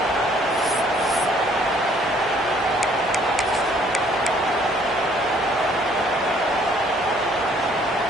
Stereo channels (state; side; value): normal; both; correlation 0.61